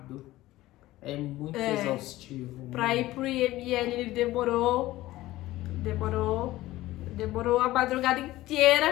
é muito exaustivo. Pra ir pro IML ele demorou a madrugada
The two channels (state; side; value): quieter; right; 16.8 dB